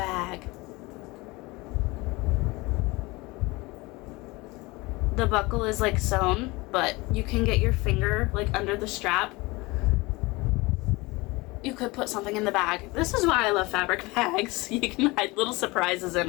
The buckle is like sewn, but you can get your finger like under the strap. You could put something in the bag. This is why I love fabric bags. You can hide little surprises in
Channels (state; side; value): quieter; right; 23.3 dB